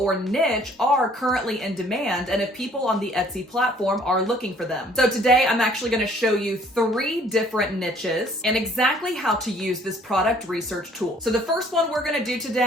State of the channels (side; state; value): both; normal; correlation 0.59